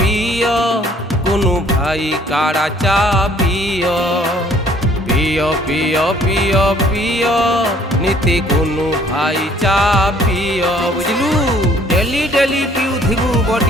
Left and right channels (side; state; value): both; normal; correlation 0.59